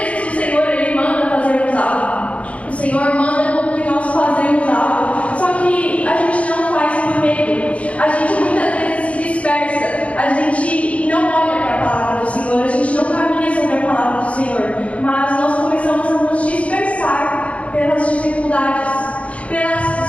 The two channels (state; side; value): late; right; 0.064 ms